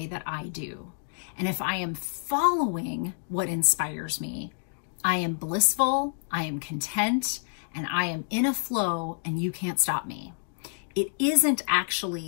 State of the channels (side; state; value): right; silent; digital silence